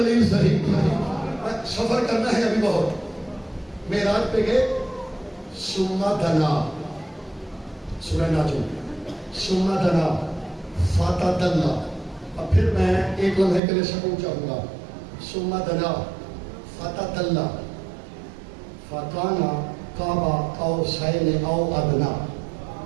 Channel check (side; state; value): left; drops out; at 13.6 s